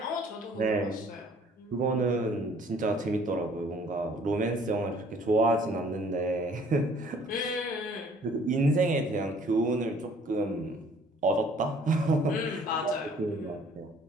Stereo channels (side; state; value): both; normal; correlation 0.57